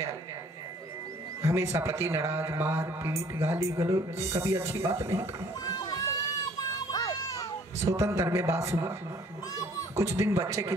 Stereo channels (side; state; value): both; normal; correlation 0.58